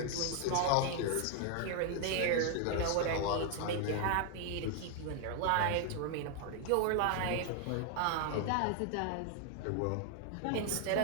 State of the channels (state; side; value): different; both; correlation 0.00